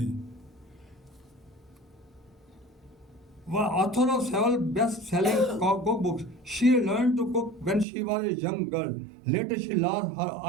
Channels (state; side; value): drops out; left; at 7.9 s